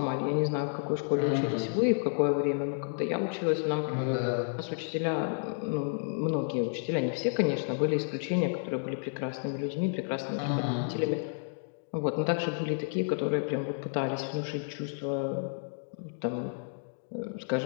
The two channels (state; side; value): silent; right; digital silence